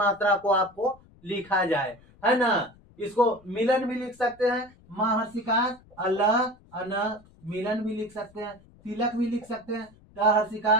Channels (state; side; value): noise; left; rumble, 27 dB below the sound